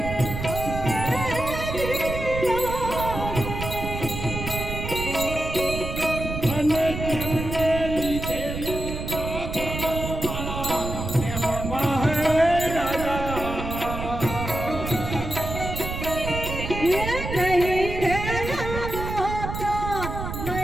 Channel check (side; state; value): right; noise; rumble, 6 dB below the sound